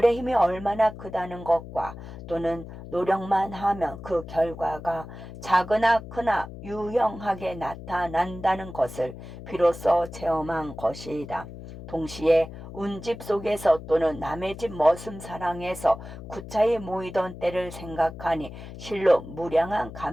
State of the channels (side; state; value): left; noise; hum, 13 dB below the sound